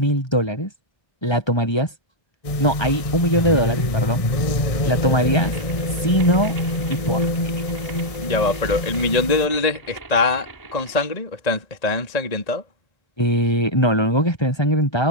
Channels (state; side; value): late; right; 1.6 ms